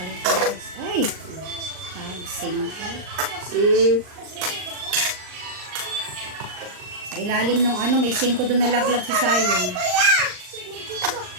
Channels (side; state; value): left; late; 39 ms